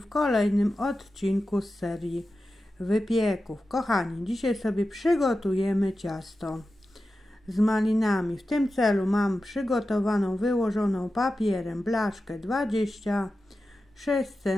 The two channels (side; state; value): both; normal; correlation 0.92